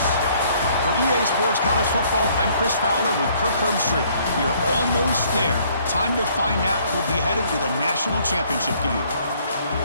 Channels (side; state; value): both; inverted; correlation -0.62